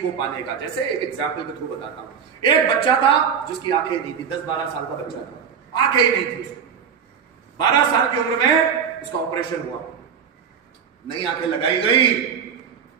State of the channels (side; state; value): left; quieter; 7.1 dB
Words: पाने का। जैसे एक एग्जाम्पल के थ्रू बताता हूं। एक बच्चा था जिसकी आंखें नहीं थी, 10-12 साल का बच्चा था, आंखें ही नहीं थी उसको। 12 साल की उम्र में उसका ऑपरेशन हुआ, नई आंखें लगाई गई।